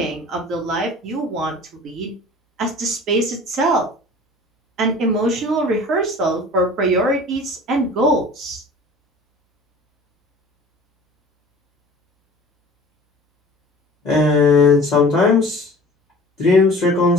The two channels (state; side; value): normal; both; correlation 0.44